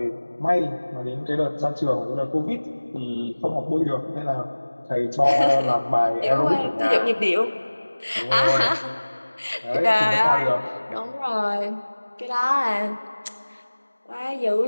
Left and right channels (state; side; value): inverted; both; correlation -1.00